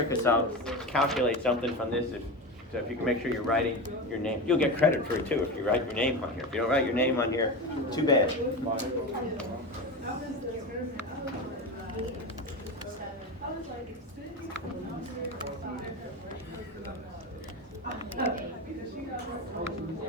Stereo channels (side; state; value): both; normal; correlation 0.22